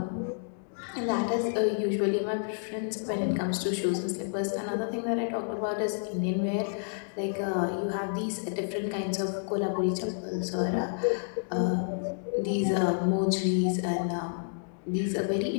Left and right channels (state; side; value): silent; right; digital silence